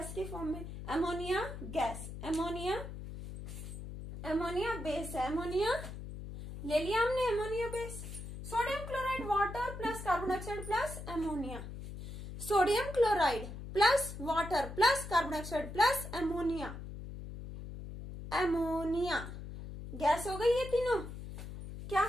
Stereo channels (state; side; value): noise; left; hum, 10 dB below the sound